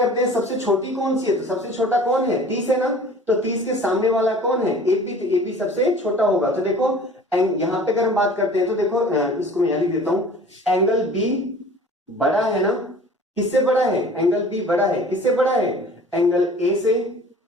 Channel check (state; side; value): normal; both; correlation 0.46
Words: हैं सबसे छोटी कौन सी है, तो सबसे छोटा कौन है, 30 है ना, तो 30 के सामने वाला कौन है, एबी, तो एबी सबसे छोटा होगा। तो देखो यहां पे अगर हम बात करते हैं तो देखो इसको मैं यहां लिख देता हूं, एंगल बी बड़ा है ना, किससे बड़ा है, एंगल बी बड़ा है, किससे बड़ा है, एंगल ए से।